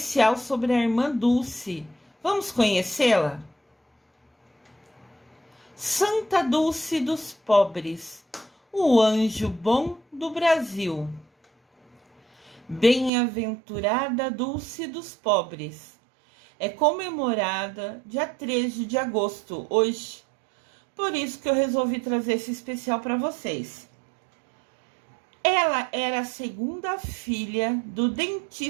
sobre a irmã Dulce. Vamos conhecê-la? Santa Dulce dos Pobres, o anjo bom do Brasil. Bem-aventurada Dulce dos Pobres. É comemorada dia 13 de agosto, hoje. Por isso que eu resolvi trazer esse especial para vocês. Ela era a segunda filha do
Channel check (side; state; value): left; drops out; at 13.1 s